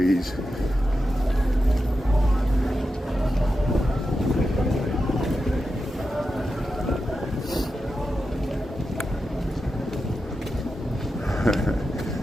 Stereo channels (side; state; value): both; normal; correlation 0.89